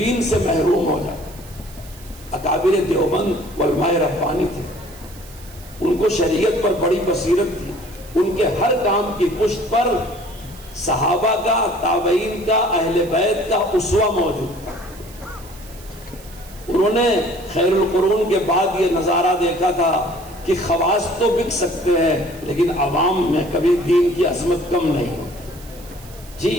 سے محروم ہو جائے۔ اکابر دیوبند علماء ربانی تھے، ان کو شریعت پر بڑی بصیرت تھی، ان کے ہر کام کی پشت پر صحابہ کا، تابعین کا، اہل بیت کا اسوہ موجود تھا۔ انہوں نے خیر القرون کے بعد یہ نظارہ دیکھا تھا کہ خواص تو بک سکتے ہیں لیکن عوام میں کبھی دین کی عظمت کم نہیں ہو۔ جی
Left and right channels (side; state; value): right; noise; hiss, 21 dB below the sound